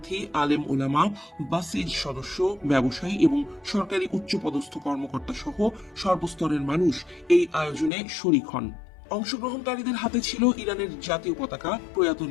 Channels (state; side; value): drops out; right; at 7.9 s